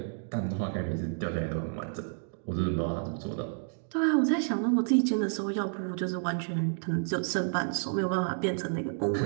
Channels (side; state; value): left; silent; digital silence